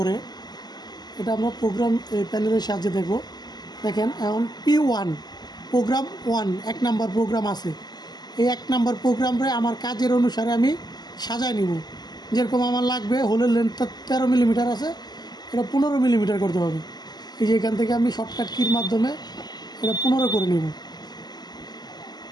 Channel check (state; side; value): late; right; 0.20 ms